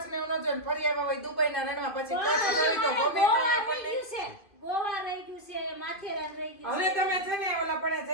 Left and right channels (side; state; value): right; late; 2.5 ms